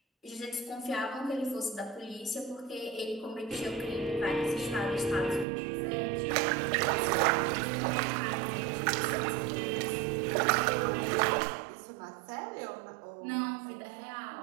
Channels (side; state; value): left; drops out; at 5.5 s